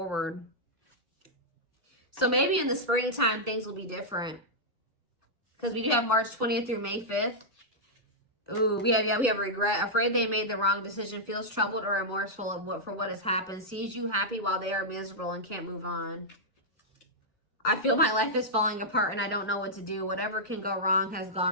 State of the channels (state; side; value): normal; both; correlation -0.08